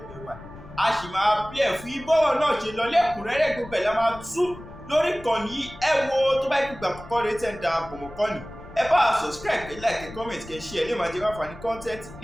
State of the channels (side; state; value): left; noise; rumble, 17 dB below the sound